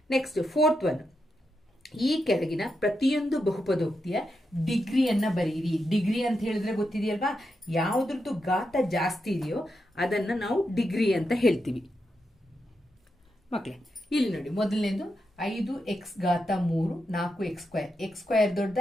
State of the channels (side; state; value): both; normal; correlation 0.85